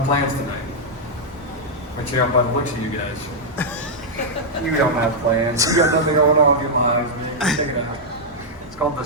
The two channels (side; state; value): both; normal; correlation -0.05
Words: plans tonight. But you know, by the looks of you guys, you don't have plans. You got nothing going on in your lives, man. Check it out. It's called The